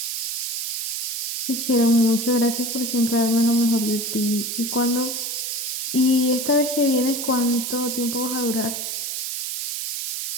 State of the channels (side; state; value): right; noise; hiss, 3 dB below the sound